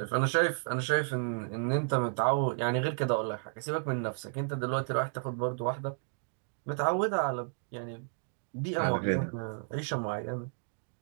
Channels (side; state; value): left; silent; digital silence